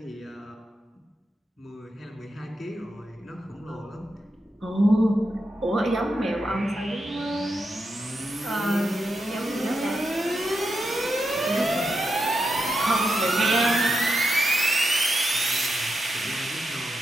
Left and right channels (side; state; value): both; normal; correlation 0.86